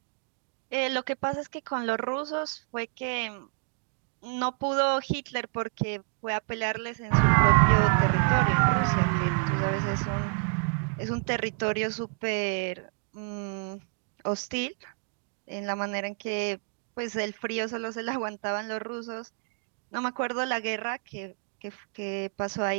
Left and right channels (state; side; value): quieter; left; 37.8 dB